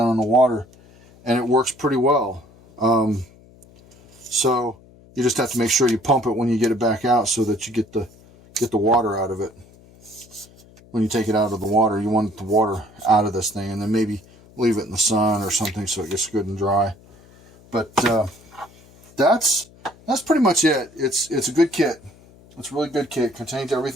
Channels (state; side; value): noise; left; hum, 25 dB below the sound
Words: in the water, and it works pretty well. So you just have to make sure you pump it when you get it back out so that you get the water out of it. When you take it out of the water, you want the water out of this thing, and then maybe leave it in the sun or something so it gets good and dry. But that's pretty much it. It's a good kit. It's a really good kit. Contains